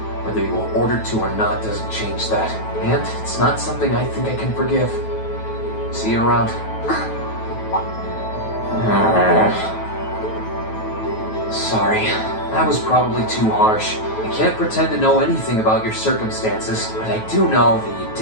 Whether you were ordered to or not doesn't change that. And it's not something I think I can forgive. See you around. Sorry, that was probably too harsh. I can't pretend to know anything about your circumstances, but I do know that you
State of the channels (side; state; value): right; late; 9.3 ms